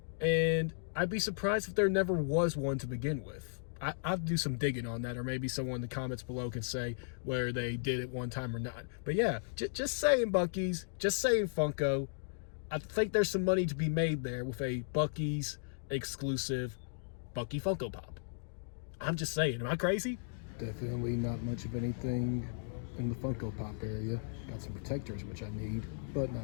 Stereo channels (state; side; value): silent; right; digital silence